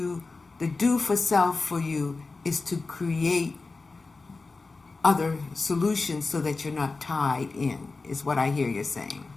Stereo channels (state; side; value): quieter; right; 3.8 dB